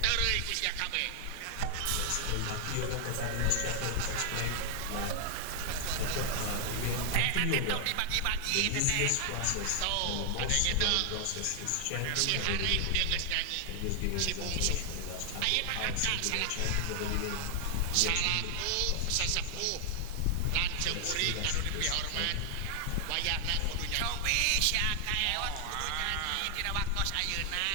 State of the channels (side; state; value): both; different; correlation 0.00